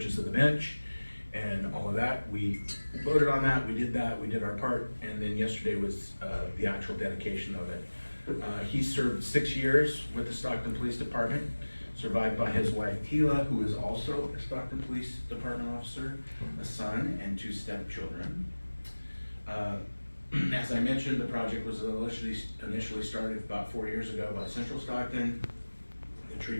of the bench and all of that. We voted on that, we did our part, and then yesterday was the actual dedication of it. He served 6 years with the Stockton Police Department, survived by his wife Tila, who is also a Stockton Police Department officer, a son, and 2 stepchildren. As I mentioned, the project was initially started about 4 years ago by Central Stockton. The tree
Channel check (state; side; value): inverted; both; correlation -1.00